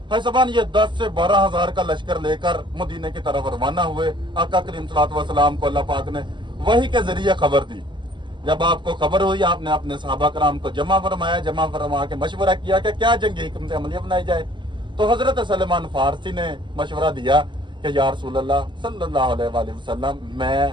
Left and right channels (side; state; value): left; late; 0.23 ms